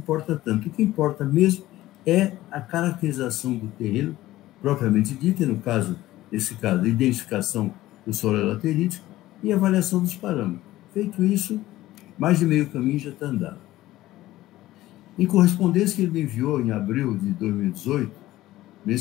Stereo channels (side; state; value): right; quieter; 16.0 dB